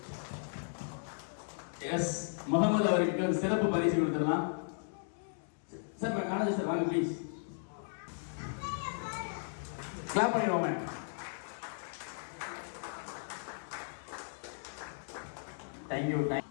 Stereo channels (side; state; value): right; silent; digital silence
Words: எஸ், முகமது அவருக்கு ஒரு சிறப்பு பரிசு கொடுத்துடலாம். சார் காலேஜ் சார் வாங்க ப்ளீஸ். கிளாப் பண்ணிடுவோமே. தேங்க்யூ.